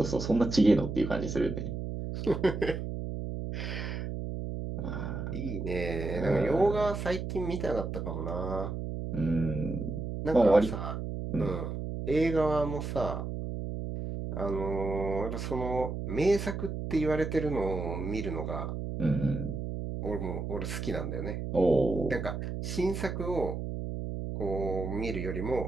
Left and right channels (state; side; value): noise; right; hum, 4 dB below the sound